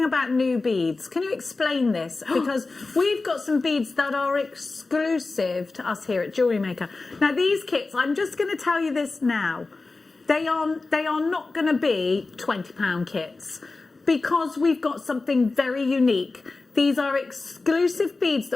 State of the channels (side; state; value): right; quieter; 3.6 dB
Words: about new beads, can you explain this? Because we've got some beads that are exclusive to us here at Jewellery Maker. Now, these kits, I'm just going to tell you this now. They are not going to be £20 kits because we've got something very unique. These are exclusive beads